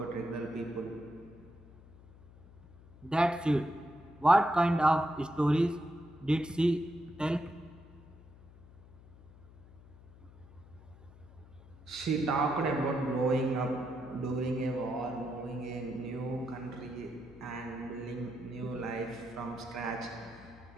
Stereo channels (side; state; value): left; noise; hum, 21 dB below the sound